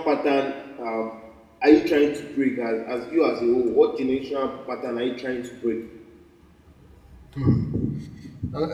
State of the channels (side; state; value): both; identical; correlation 1.00